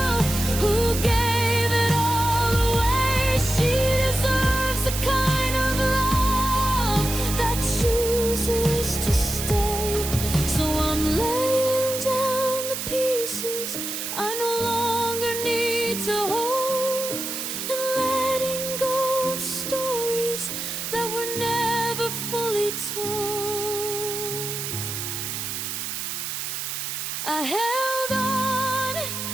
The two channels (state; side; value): noise; right; hiss, 4 dB below the sound